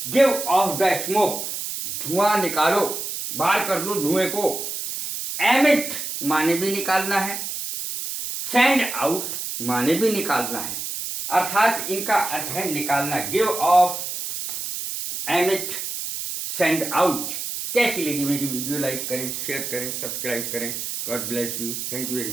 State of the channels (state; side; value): noise; right; hiss, 5 dB below the sound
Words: गिव ऑफ द स्मोक, धुआं निकालो, बाहर कर लो धुएं को। एमिट माने भी निकालना है, सेंड आउट माने भी निकालना है, अर्थात इनका अर्थ है निकालना। Give of, emit, send out. कैसी लगी मेरी वीडियो? लाइक करें, शेयर करें, सब्सक्राइब करें। God bless you, thank you very